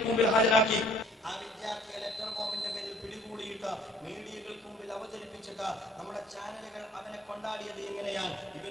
മുമ്പിൽ ഹാജരാക്കി. ആ വിദ്യാർത്ഥിയെ ലെറ്റർ ബോംബിന്റെ പേരിൽ പിടികൂടിയിട്ട് മീഡിയകൾക്ക് മുമ്പിൽ അവതരിപ്പിച്ചിട്ട് നമ്മുടെ ചാനലുകൾ അവനെ കൊണ്ടാടിയത് എങ്ങനെയാണ്?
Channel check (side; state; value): both; normal; correlation 0.58